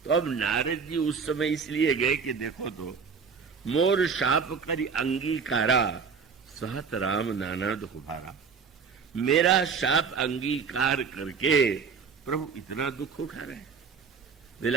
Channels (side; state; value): left; quieter; 5.8 dB